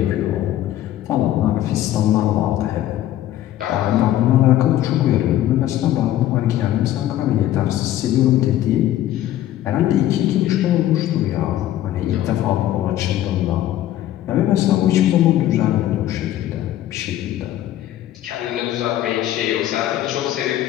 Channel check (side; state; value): right; quieter; 13.1 dB